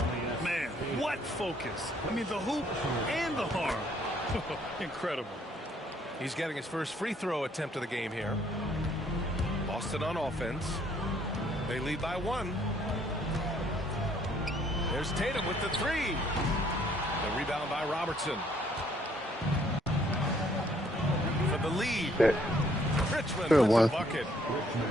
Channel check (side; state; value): both; normal; correlation 0.65